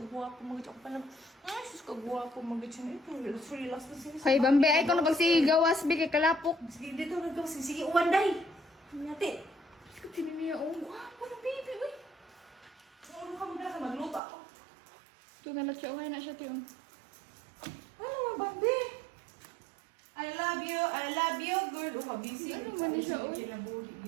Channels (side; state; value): left; drops out; at 14.2 s